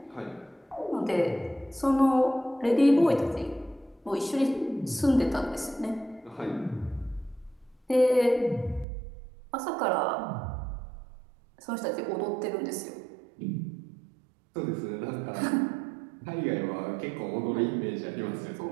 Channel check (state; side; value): drops out; left; at 8.8 s